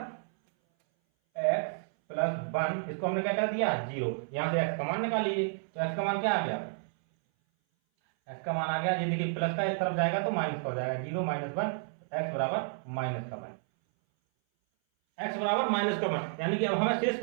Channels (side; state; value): left; silent; 57 dB below the other